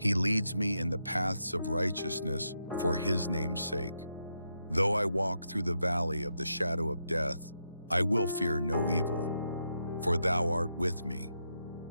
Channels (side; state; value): both; inverted; correlation -0.83